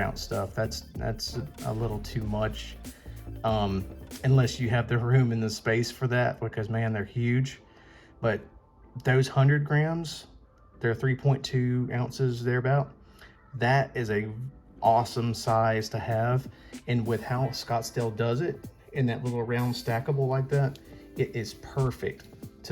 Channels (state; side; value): identical; both; correlation 1.00